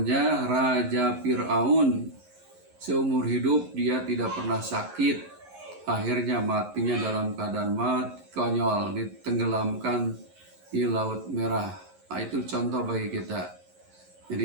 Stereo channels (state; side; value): late; left; 11 ms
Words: Raja Fir'aun. Seumur hidup dia tidak pernah sakit. Akhirnya matinya dalam keadaan mati, konyol, ditenggelamkan di Laut Merah. Nah, itu contoh bagi kita.